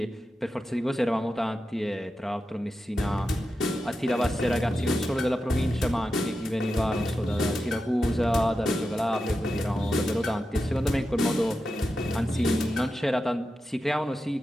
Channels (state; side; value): normal; both; correlation 0.90